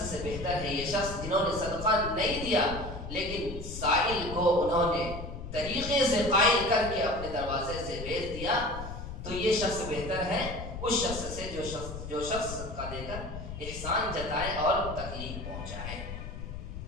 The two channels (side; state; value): left; noise; rumble, 8 dB below the sound